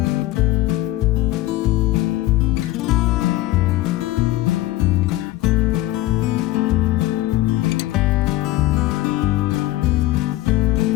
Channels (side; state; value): right; quieter; 16.7 dB